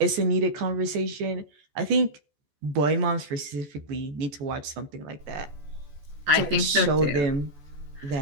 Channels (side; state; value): left; late; 14 ms